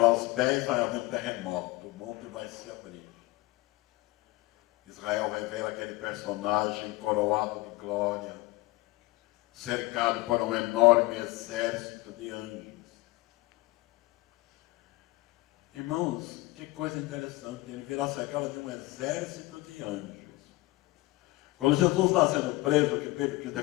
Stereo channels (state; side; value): quieter; right; 20.8 dB